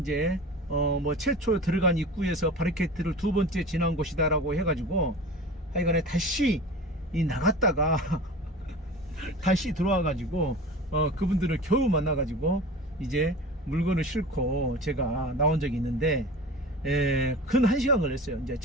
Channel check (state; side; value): normal; both; correlation 0.36